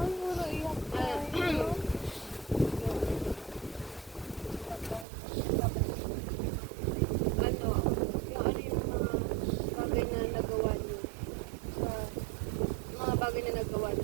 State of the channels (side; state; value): left; drops out; at 5.1 s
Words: puro iyak tayo. Ano, yung bagay na nagawa niyo sa mga bagay na nagawa